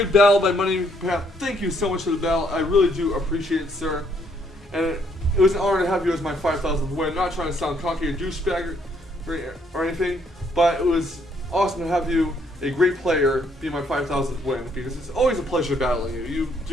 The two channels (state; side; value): normal; both; correlation 0.69